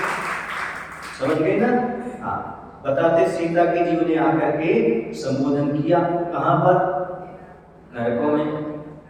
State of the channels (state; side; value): identical; both; correlation 1.00